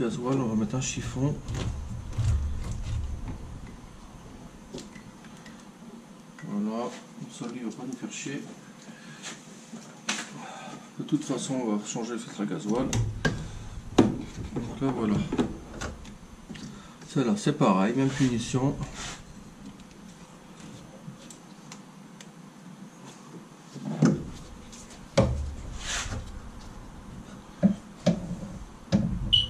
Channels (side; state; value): both; identical; correlation 1.00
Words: On va mettre un chiffon. Voilà. Comme ça lui il va pas nous faire chier. De toute façon on va changer le filtre à gasoil. Donc là voilà. Celle-là c'est pareil, même punition.